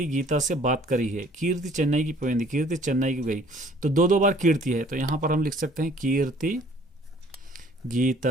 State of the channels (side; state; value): both; normal; correlation 0.56